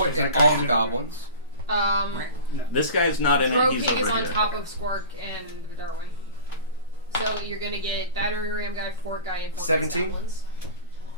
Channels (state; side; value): inverted; both; correlation -0.34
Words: is that and all guy the in goblins. No. This guy's not in it. He's Droking over is on here. top of Squark and Darwin. So you're gonna get Battering Ram Guy, Fort Guy, and 17? Goblins.